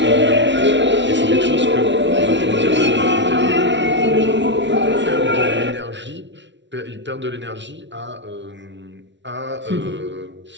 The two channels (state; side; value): late; left; 0.53 ms